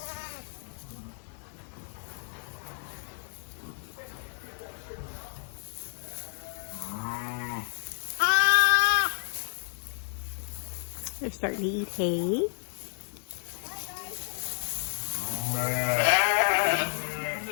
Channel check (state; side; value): silent; right; digital silence